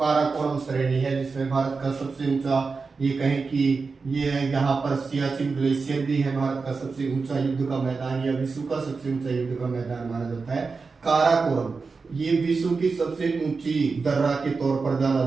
श्रेणी है जिसमें भारत का सबसे ऊंचा, ये कहें कि ये यहाँ पर सियाचिन ग्लेशियर भी है, भारत का सबसे ऊंचा युद्ध का मैदान या विश्व का सबसे ऊंचा युद्ध का मैदान माना जाता है काराकोरम। ये विश्व की सबसे ऊंची दर्रा के तौर पर जाना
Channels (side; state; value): left; quieter; 4.5 dB